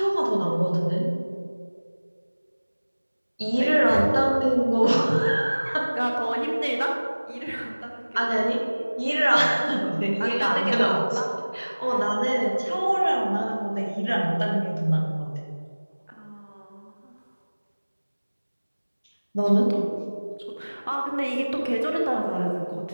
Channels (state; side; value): inverted; both; correlation -1.00